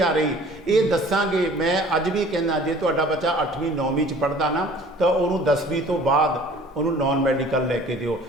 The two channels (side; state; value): both; normal; correlation 0.50